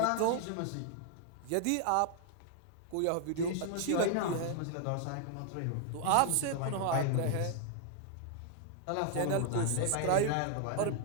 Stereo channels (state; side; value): different; both; correlation 0.00